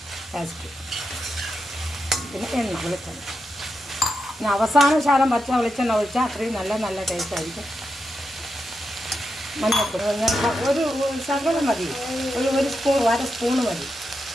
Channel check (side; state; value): both; normal; correlation 0.86